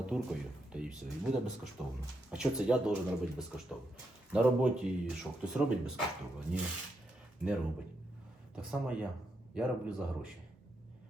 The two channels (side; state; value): both; normal; correlation 0.81